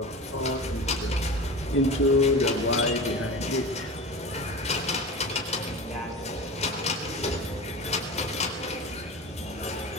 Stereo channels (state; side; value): normal; both; correlation 0.31